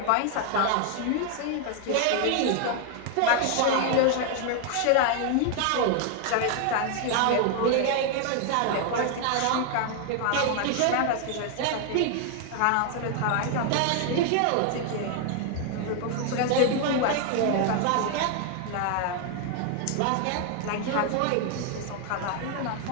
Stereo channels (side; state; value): both; different; correlation 0.00